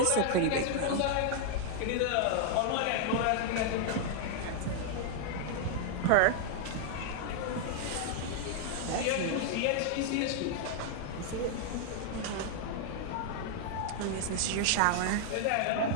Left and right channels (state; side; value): different; both; correlation 0.00